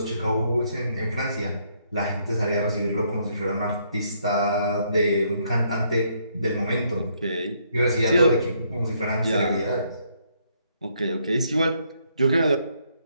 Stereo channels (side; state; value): both; inverted; correlation -0.72